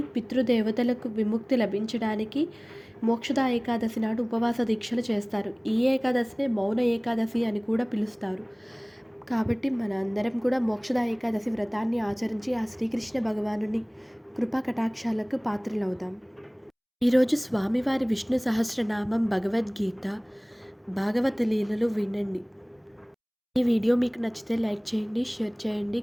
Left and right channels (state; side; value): identical; both; correlation 1.00